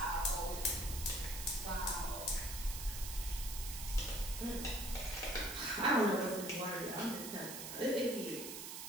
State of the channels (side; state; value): right; noise; hiss, 8 dB below the sound